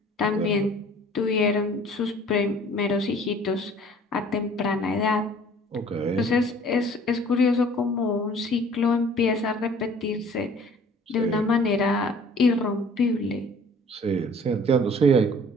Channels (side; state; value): both; normal; correlation 0.51